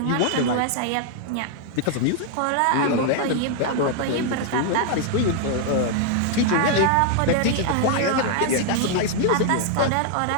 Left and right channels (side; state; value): both; different; correlation 0.00